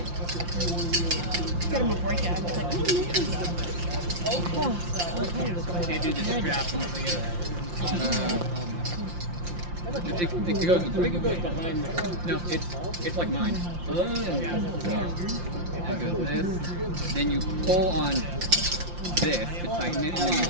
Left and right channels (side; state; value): left; late; 5.7 ms